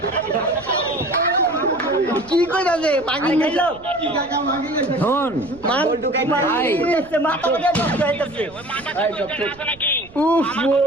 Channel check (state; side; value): noise; right; rumble, 23 dB below the sound